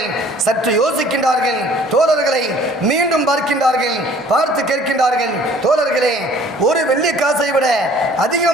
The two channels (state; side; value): normal; both; correlation 0.53